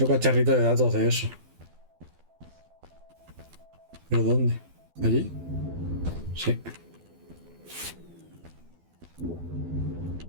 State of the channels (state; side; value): late; left; 12 ms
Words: cacharrito de datos de eso. ¿Pero dónde? ¿Allí? Sí.